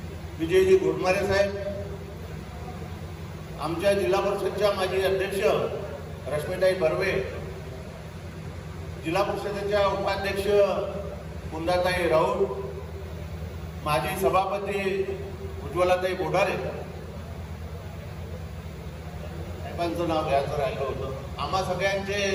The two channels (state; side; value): identical; both; correlation 1.00